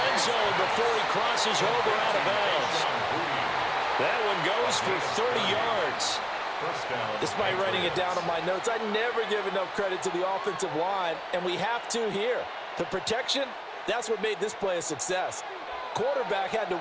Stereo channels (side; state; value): both; identical; correlation 1.00